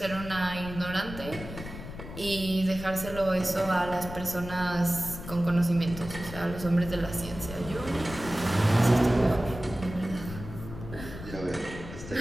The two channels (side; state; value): left; noise; rumble, 11 dB below the sound